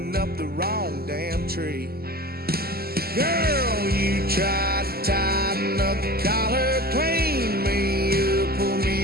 up the wrong damn tree. Girl, you tried to tighten up the collar, clean me up, pull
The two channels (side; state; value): left; late; 0.45 ms